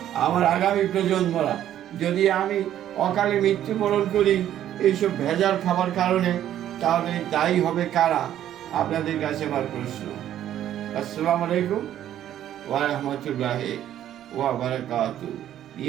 আমার আগামী প্রজন্মরা। যদি আমি অকালে মৃত্যুবরণ করি এইসব ভেজাল খাবার কারণে, তাহলে দায়ী হবে কারা? আপনাদের কাছে আমার প্রশ্ন। আসসালামু আলাইকুম ওয়া রাহমাতুল্লাহি ওয়া বারাকাতুহু।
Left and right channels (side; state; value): left; quieter; 11.5 dB